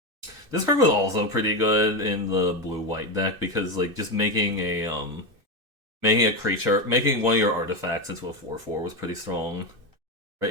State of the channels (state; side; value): late; left; 2.6 ms